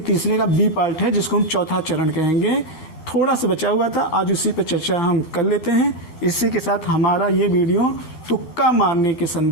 तीसरे का बी पार्ट है, जिसको हम चौथा चरण कहेंगे, थोड़ा सा बचा हुआ था। आज उसी पर चर्चा हम कर लेते हैं। इसी के साथ हमारा ये वीडियो तुक्का मारने के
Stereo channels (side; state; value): right; late; 13 ms